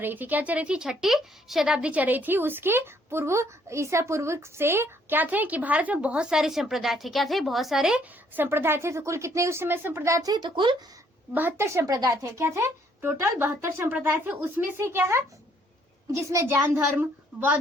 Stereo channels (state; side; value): normal; both; correlation 0.66